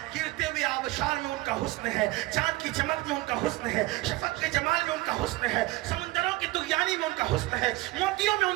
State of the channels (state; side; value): quieter; left; 20.0 dB